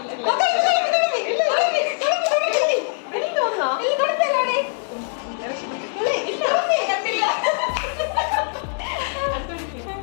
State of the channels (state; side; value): silent; right; 60 dB below the other